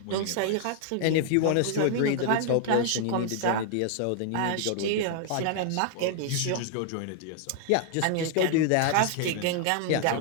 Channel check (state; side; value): different; both; correlation 0.00